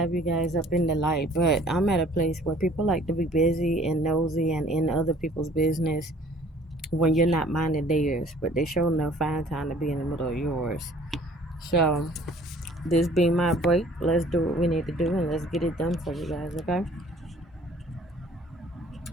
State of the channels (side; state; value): both; normal; correlation 0.54